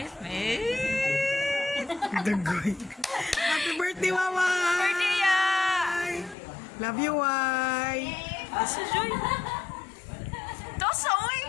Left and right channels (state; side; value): drops out; right; at 6.4 s